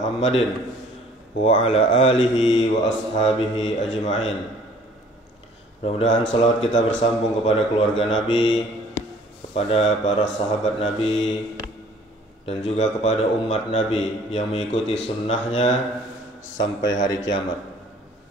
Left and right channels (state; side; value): normal; both; correlation 0.54